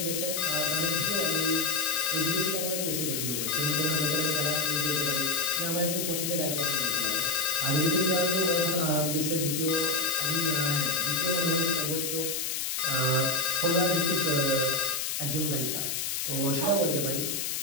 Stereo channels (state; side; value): noise; left; hiss, 1 dB below the sound